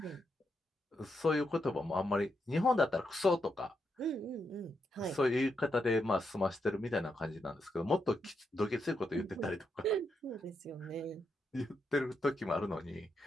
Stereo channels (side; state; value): both; normal; correlation 0.82